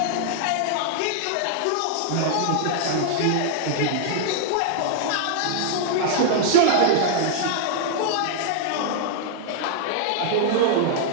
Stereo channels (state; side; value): different; both; correlation -0.01